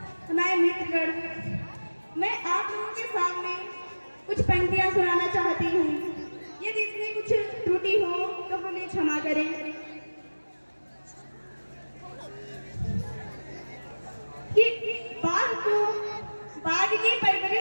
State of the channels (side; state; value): both; inverted; correlation -1.00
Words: हमारे मित्रगण, मैं आप लोगों के सामने कुछ पंक्तियां सुनाना चाहती हूँ। यदि इसमें कुछ त्रुटि हो तो हमें क्षमा करें। कि बाघ को बाघ की